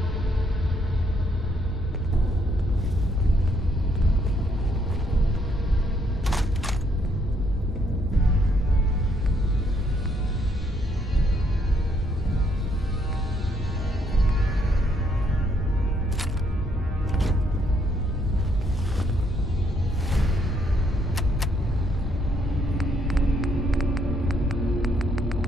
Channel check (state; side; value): normal; both; correlation 0.71